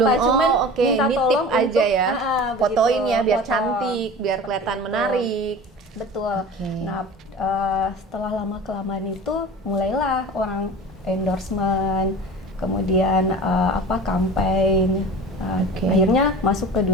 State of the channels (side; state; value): both; normal; correlation 0.37